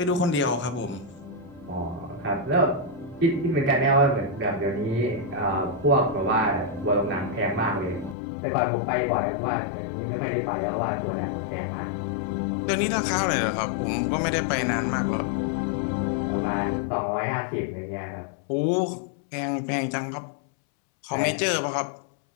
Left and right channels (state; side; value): drops out; right; at 8.2 s